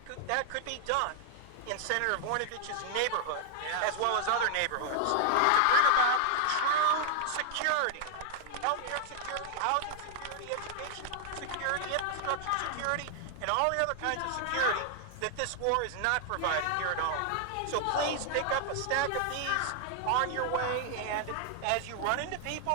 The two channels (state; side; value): different; both; correlation 0.00